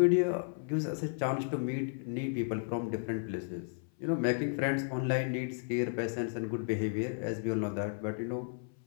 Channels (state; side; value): silent; right; 55 dB below the other